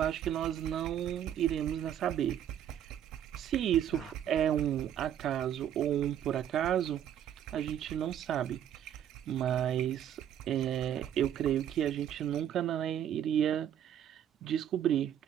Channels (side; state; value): left; quieter; 10.2 dB